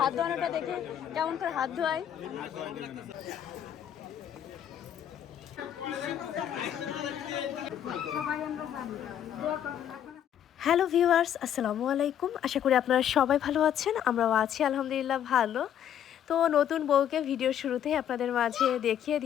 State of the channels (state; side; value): quieter; right; 9.9 dB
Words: হাত ধোয়ানোটা দেখে কেমন করে হাত ধোয়ায়। হ্যালো ভিউয়ার্স, আসসালামু আলাইকুম। আশা করি আপনারা সবাই ভালো আছেন। আমরাও আছি আলহামদুলিল্লাহ ভালো। তো নতুন বউকে ভিডিও শুরুতেই আপনাদের মাঝে দেখিয়ে